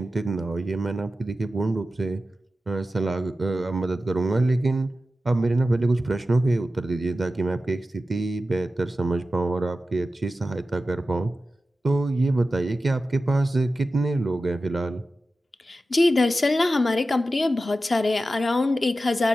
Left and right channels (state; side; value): normal; both; correlation 0.93